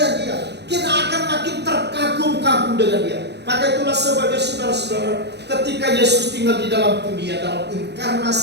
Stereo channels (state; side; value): late; left; 0.49 ms